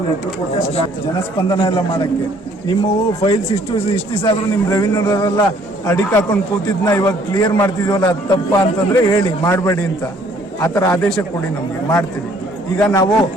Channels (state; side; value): normal; both; correlation 0.61